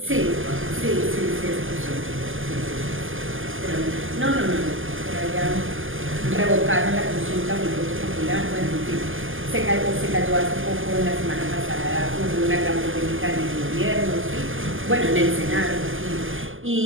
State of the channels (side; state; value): left; late; 0.58 ms